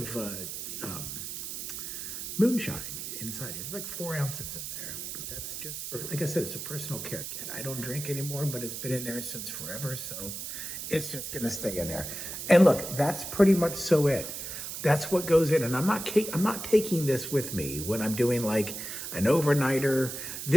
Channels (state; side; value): noise; right; hiss, 6 dB below the sound